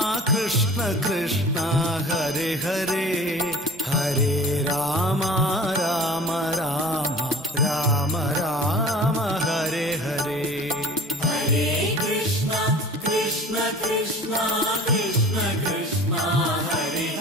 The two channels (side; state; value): both; normal; correlation 0.43